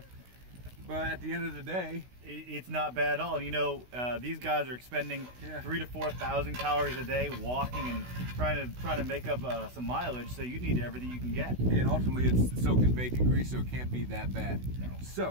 But at the end of the day, it's not bad at all. And you know, these guys are expending 3,000 to 4,000 calories a day walking and trying to make up some mileage. So you need everything you can get. And ultimately, it's soaked in bacon grease, so it can't be that bad. No.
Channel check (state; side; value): late; left; 16 ms